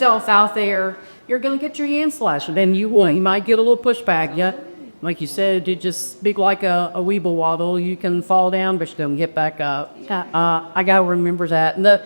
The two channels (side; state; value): both; inverted; correlation -1.00